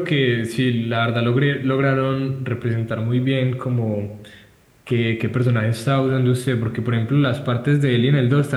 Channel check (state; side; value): identical; both; correlation 1.00